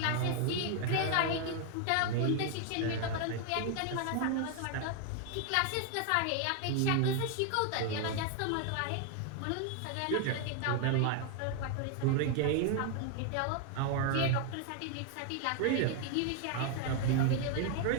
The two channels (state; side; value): different; both; correlation 0.00